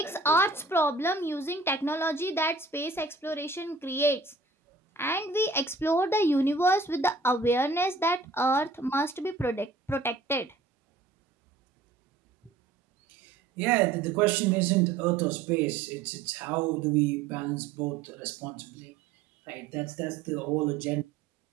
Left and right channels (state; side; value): quieter; left; 4.0 dB